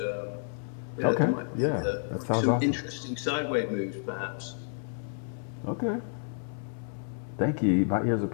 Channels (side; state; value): right; silent; 58 dB below the other